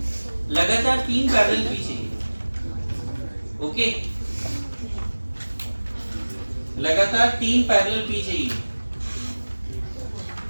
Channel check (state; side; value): inverted; both; correlation -1.00